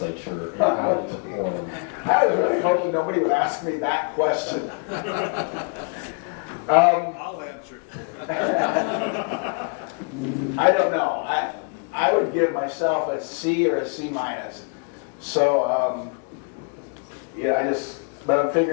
and how they performed? I was really hoping nobody would ask me that question. I'll answer. I don't know. I would give myself a C or a C minus. So, yeah, but I'm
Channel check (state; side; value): quieter; right; 36.0 dB